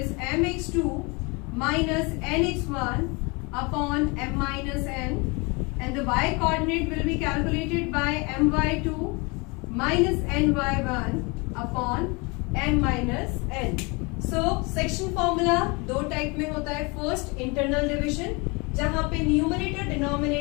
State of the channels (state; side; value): quieter; right; 28.5 dB